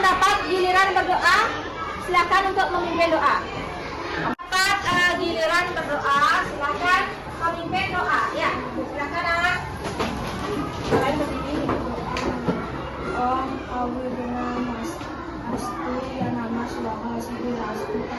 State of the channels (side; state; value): both; identical; correlation 1.00